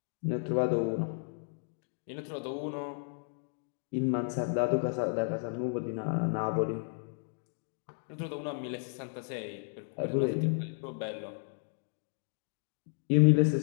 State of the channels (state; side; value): silent; right; digital silence